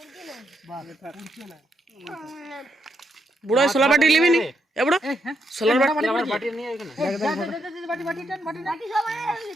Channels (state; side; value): normal; both; correlation 0.78